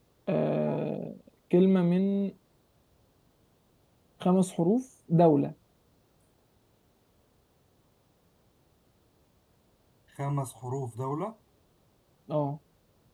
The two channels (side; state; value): both; identical; correlation 1.00